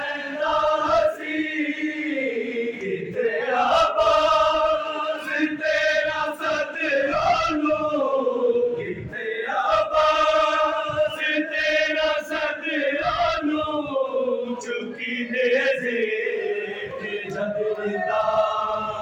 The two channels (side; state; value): both; identical; correlation 1.00